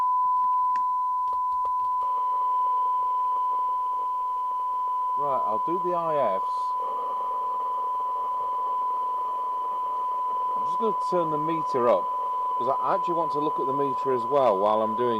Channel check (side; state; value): both; identical; correlation 1.00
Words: Right, I'll do the IFs. going to turn the meter up because I actually want to look at the meter as well while I'm